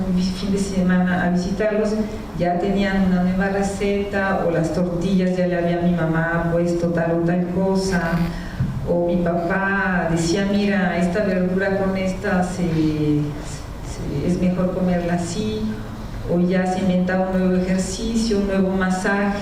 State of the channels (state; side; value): identical; both; correlation 1.00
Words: fin de semana a visitarlos, ya tenían una nueva receta, o las tortillas ya le había mi mamá puesto tal o tal cosa, o mi papá decía: mira, esta verdura con esta es mejor comerla así, o ya se inventaba un nuevo ejercicio, un nuevo